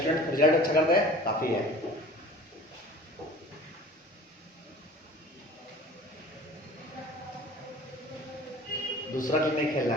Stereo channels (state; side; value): normal; both; correlation 0.43